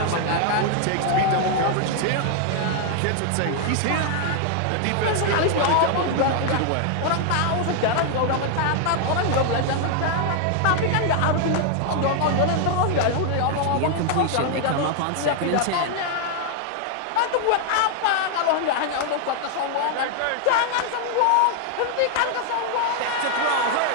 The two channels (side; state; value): both; different; correlation 0.00